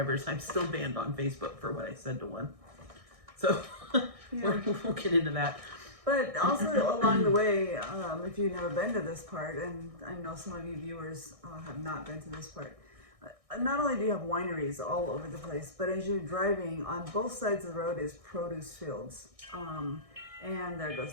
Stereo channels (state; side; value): late; left; 1.6 ms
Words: I'm still banned on Facebook for what I said to one. So we'll get into that. But also along the way, if you've never been to this part, and I know some of you viewers have not been to this part, not only do you have wineries all over the place, but as you're driving, on both sides of the road is produce fields. And there